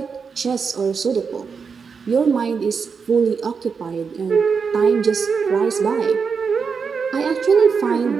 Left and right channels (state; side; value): quieter; left; 5.7 dB